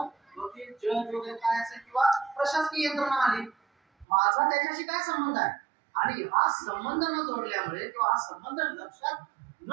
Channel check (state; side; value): drops out; left; at 4.0 s